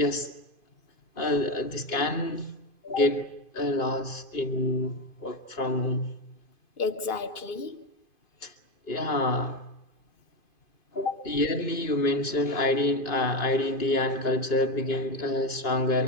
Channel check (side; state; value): right; late; 2.5 ms